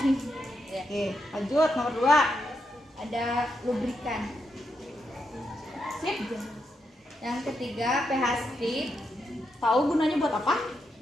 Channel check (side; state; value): both; normal; correlation 0.83